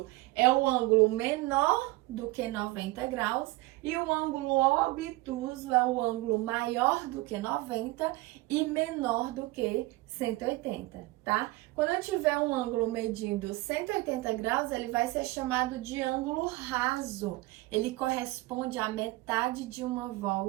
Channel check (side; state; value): left; quieter; 20.7 dB